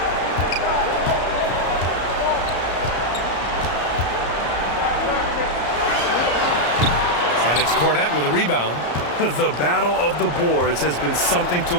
It's Cornette with a rebound. The battle of the boards has been something to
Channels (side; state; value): right; late; 34 ms